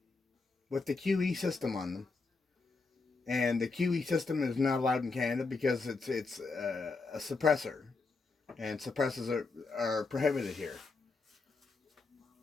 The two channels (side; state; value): right; quieter; 4.0 dB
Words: with the QE system on them. And the QE system is not allowed in Canada because it's a suppressor. And suppressors are prohibited here.